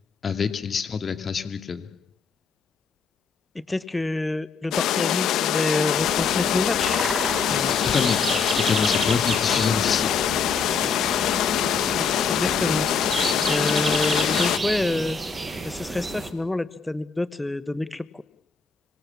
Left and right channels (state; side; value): quieter; right; 5.4 dB